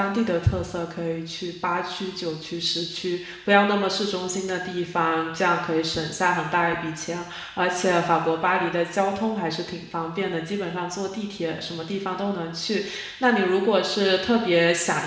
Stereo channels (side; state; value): both; identical; correlation 1.00